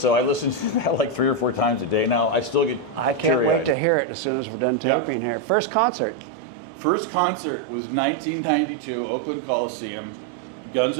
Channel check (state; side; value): drops out; left; at 3.8 s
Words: I listened to that like 3 or 4 times a day now. I still get I can't wait to hear it as soon as we're done talking here. First concert? First concert was 1992, Oakland Coliseum, Guns